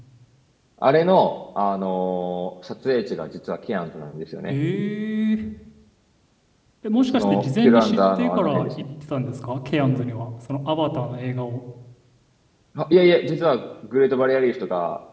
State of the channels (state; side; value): identical; both; correlation 1.00